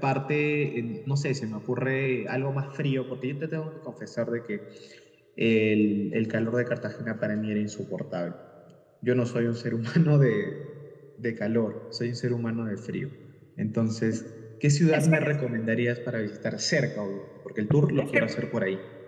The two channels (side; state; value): both; identical; correlation 1.00